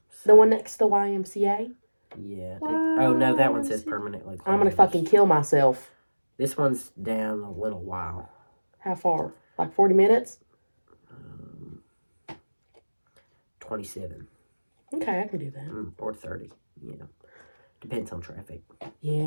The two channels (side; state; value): both; inverted; correlation -1.00